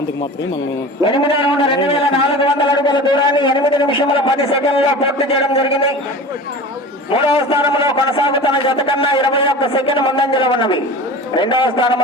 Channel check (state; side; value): normal; both; correlation 0.36